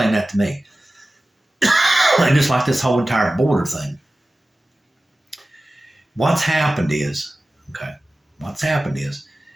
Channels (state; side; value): normal; both; correlation 0.96